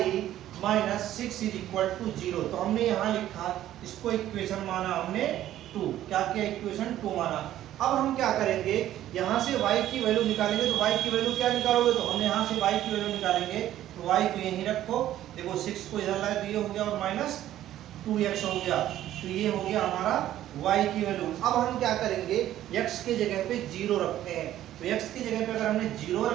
- 6 = 0। तो हमने यहाँ लिखा, इसको इक्वेशन माना हमने 2। क्या किया, इक्वेशन 2 माना। अब हम क्या करेंगे, यहाँ से y की वैल्यू निकालेंगे। तो y की वैल्यू क्या निकालोगे, तो हमने यहाँ से y की वैल्यू निकालेंगे तो y को यहीं रखो। देखो 6 को इधर लाए तो ये हो गया और -2x हो गया, तो ये हो गया हमारा y की वैल्यू। अब हम क्या करेंगे, x के जगह पे 0 रखते हैं। तो x की जगह पे अगर हमने 0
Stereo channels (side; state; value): left; quieter; 12.8 dB